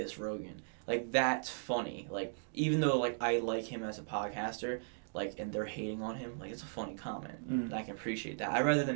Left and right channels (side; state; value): left; silent; digital silence